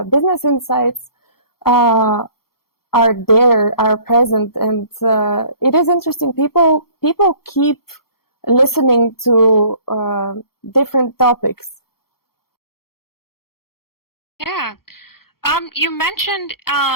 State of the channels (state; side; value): late; right; 0.94 ms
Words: business insights are present, and it is interesting. People keep listening to different topics. Yeah. You mentioned